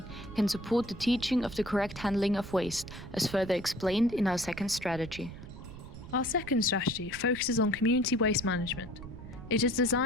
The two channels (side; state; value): right; noise; rumble, 14 dB below the sound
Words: can support the teaching of the correct handling of waste, as further explained in our second strategy. Our second strategy focuses on community waste management. It is